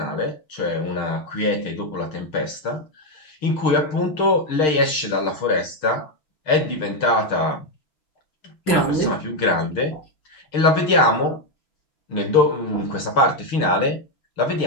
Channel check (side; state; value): right; late; 6.5 ms